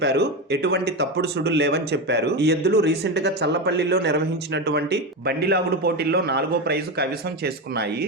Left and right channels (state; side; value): normal; both; correlation 0.16